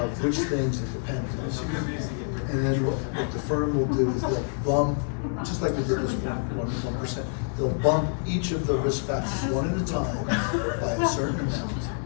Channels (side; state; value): right; silent; 60 dB below the other